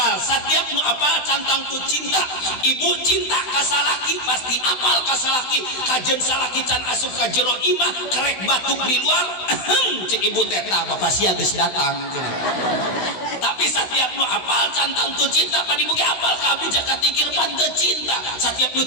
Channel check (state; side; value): late; right; 16 ms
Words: setiap nu apal cantang tu cinta. Ibu cinta ka salaki pasti apal ka salaki, kajen salaki can asup ka jero imah kerek batuk di luar. Cek ibu teh tah bapak sia geus datang. Tapi setiap nu apal cantang tu cinta padi mugi apal ka abdi jaka tingkir pan teu cinta. Setiap nu